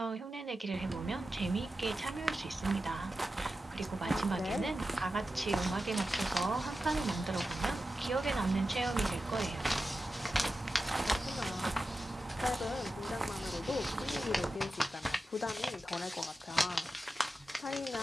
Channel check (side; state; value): both; normal; correlation 0.92